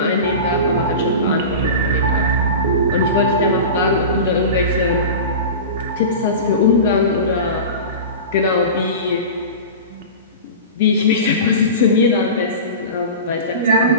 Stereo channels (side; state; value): both; inverted; correlation -0.30